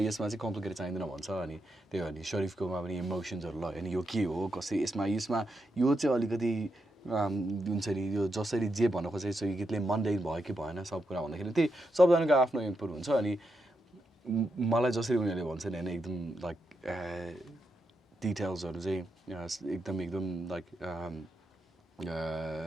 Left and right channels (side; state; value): both; normal; correlation 0.84